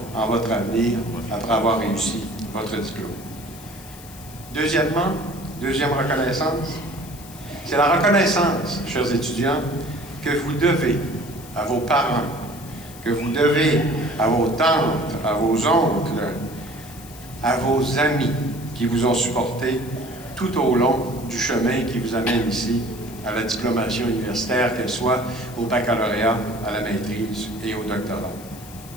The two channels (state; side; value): noise; left; hiss, 18 dB below the sound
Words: en votre avenir après avoir réussi votre diplôme. Deuxième reconnaissance, c'est la reconnaissance, chers étudiants, que vous devez à vos parents, que vous devez à vos tantes, à vos oncles, à vos amis qui vous ont supporté tout au long du chemin qui vous amène ici à la diplomation universitaire, qu'elle soit au baccalauréat, à la maîtrise et au doctorat.